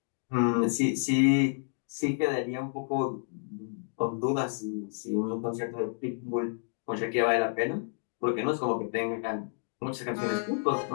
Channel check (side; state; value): right; silent; digital silence